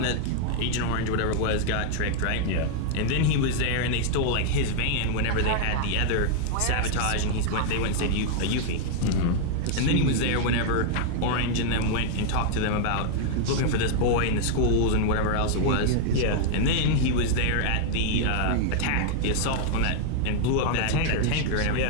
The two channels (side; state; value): both; different; correlation 0.00